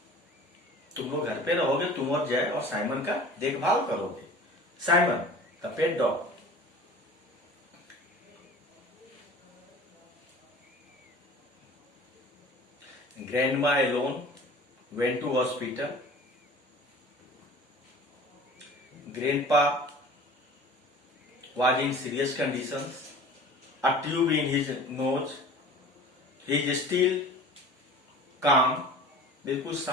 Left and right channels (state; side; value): normal; both; correlation 0.42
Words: तुम लोग घर पे रहोगे, तुम और जय और साइमन का देखभाल करोगे. Simon the pet dog. Grandma alone went to hospital. Grandpa was in serious conditions. A tube in his nose. He is still calm. बिल्कुल